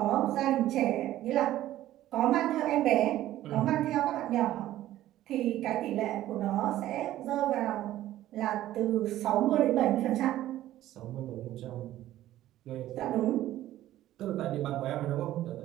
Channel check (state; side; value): quieter; left; 13.9 dB